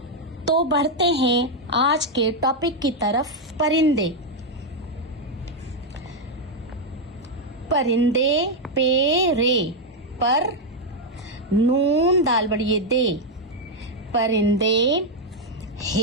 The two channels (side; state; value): both; normal; correlation 0.01